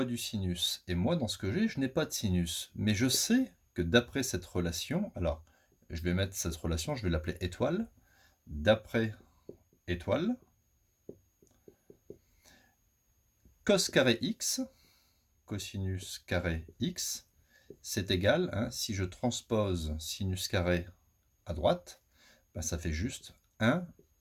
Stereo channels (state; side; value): identical; both; correlation 1.00